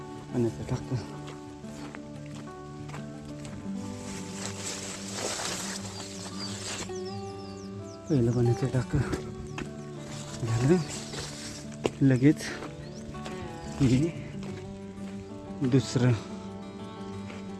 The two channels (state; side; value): identical; both; correlation 1.00